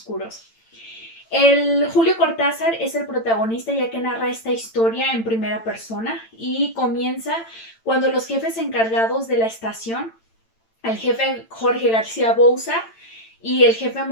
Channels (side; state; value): right; late; 8.9 ms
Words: El Julio Cortázar es el protagonista, ya que narra esta historia en primera persona y comienza cuando los jefes encargados de la estación, el jefe Jorge García Bouza y el jefe